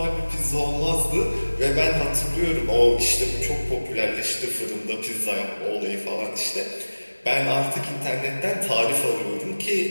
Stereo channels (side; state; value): both; inverted; correlation -1.00